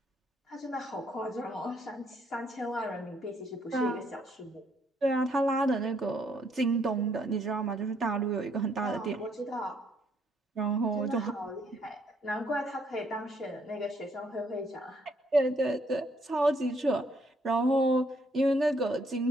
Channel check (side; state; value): both; normal; correlation 0.69